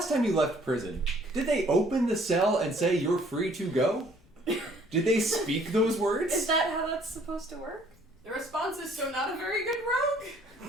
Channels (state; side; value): noise; left; rumble, 30 dB below the sound